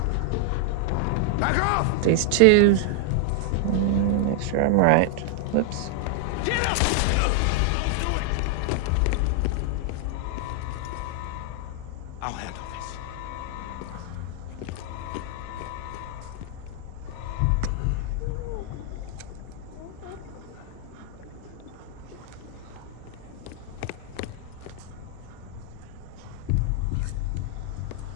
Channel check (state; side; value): different; both; correlation 0.00